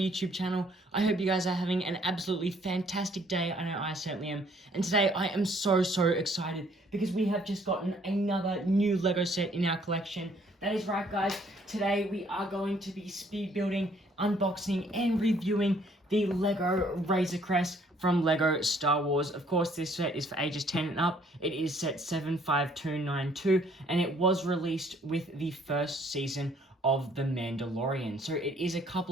channel. I hope you guys are having an absolutely fantastic day. I know I certainly am. And today I am so excited because we have just gotten another new Lego set in our collection. That is right guys, today we are going to be speed building, unboxing and reviewing the Lego Razor Crest from Lego Star Wars. Of course, this set is for ages 10 and up. It is set 75292 and it was released with the first season of The Mandalorian. So it is a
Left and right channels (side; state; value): both; normal; correlation 0.62